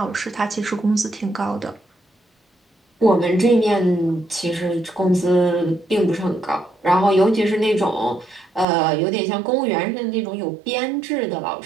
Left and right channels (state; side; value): drops out; left; at 8.7 s